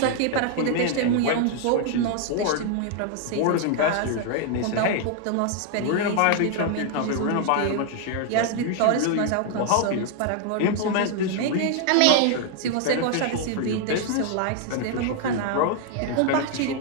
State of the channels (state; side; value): different; both; correlation 0.00